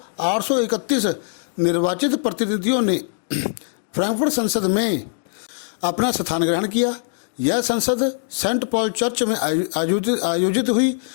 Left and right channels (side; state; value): right; silent; digital silence